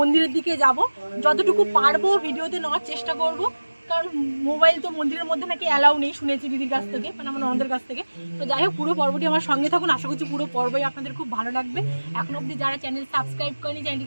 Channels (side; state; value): both; inverted; correlation -1.00